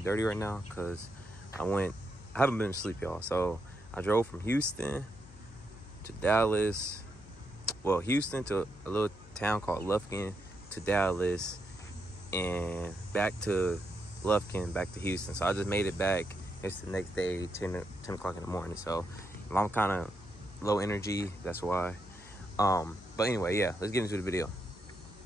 dirty right now because I haven't been asleep, y'all. So I drove from Houston to Dallas. Well, Houston to a little town called Lufkin to Dallas, and back to Lufkin, back to Houston. So I just made it back. It's the next day, 10 o'clock in the morning. So if I'm kind of low energy, that's why. But anyway, yeah, let's get into the video.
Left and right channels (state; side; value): noise; left; hum, 19 dB below the sound